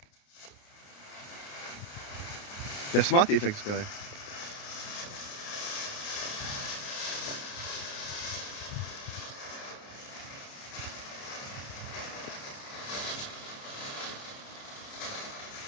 Der Smart-Effekt ist geil.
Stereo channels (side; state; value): right; late; 29 ms